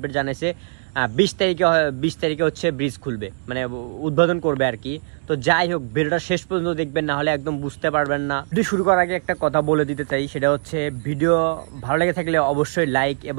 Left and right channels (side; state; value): left; silent; digital silence